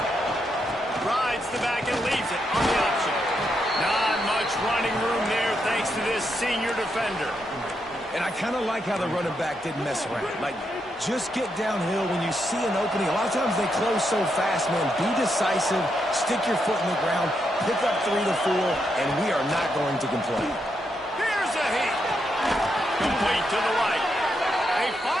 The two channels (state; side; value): normal; both; correlation 0.81